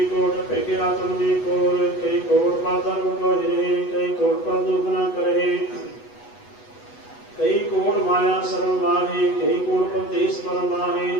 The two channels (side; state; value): right; late; 8.1 ms